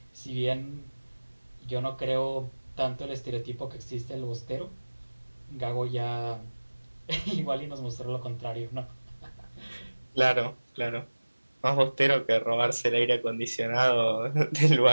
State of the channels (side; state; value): both; inverted; correlation -1.00